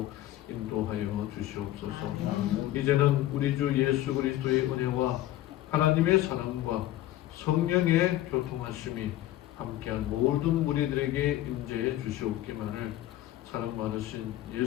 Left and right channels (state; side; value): quieter; right; 14.4 dB